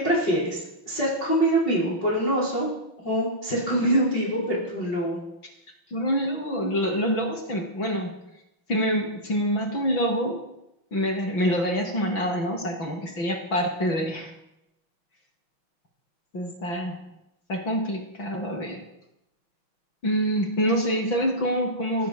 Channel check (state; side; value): late; right; 6.0 ms